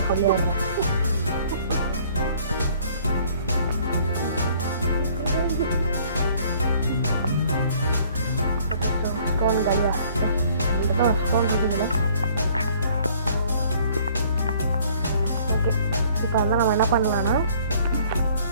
சொல்லிடுறேன். ஸ்டோன் கல்யா ஸ்டோன் இருக்குதுல்ல. ஓகே, இப்போ வந்து நம்ம என்ன பண்ணலான்னா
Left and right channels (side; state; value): both; inverted; correlation -0.58